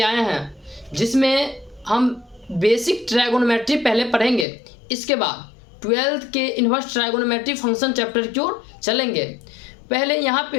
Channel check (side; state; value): right; drops out; at 4.5 s